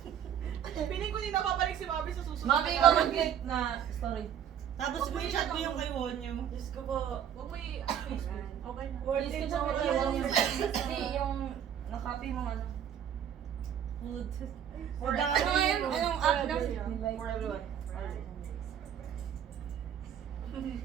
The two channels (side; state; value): left; quieter; 9.3 dB